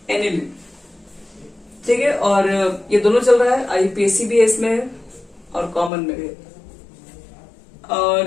एनिलीन। ठीक है, और ये दोनों चल रहा है, आईयूपीएसी भी है इसमें और कॉमन में भी है।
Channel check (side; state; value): right; drops out; at 5.9 s